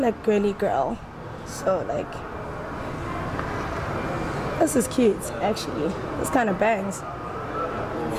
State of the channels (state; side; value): identical; both; correlation 1.00